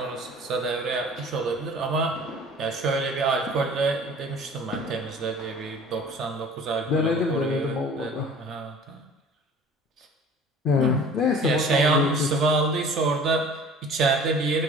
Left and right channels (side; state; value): both; normal; correlation 0.46